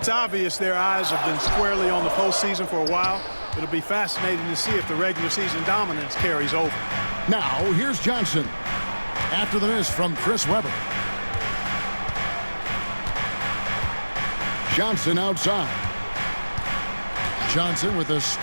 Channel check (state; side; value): inverted; both; correlation -1.00